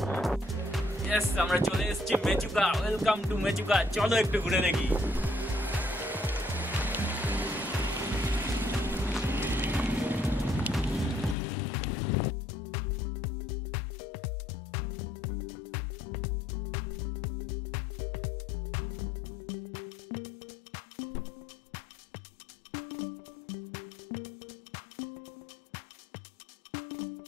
আমরা চলে এসেছি মেচুকা। Welcome to Mechuka. চলো একটু ঘুরে দেখি।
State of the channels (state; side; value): drops out; right; at 11.4 s